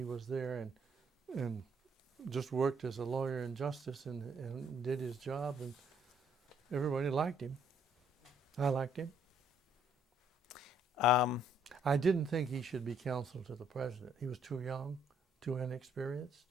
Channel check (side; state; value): both; normal; correlation 0.67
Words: was there and just worked as a lawyer in Justice and did his job, and everybody liked him. I liked him. I didn't think he should be counsel to the president. He was too young, too inexperienced.